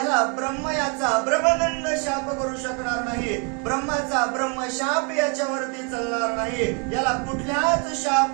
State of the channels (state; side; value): quieter; left; 35.7 dB